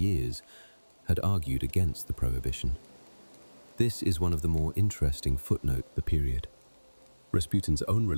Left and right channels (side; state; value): both; inverted; correlation -1.00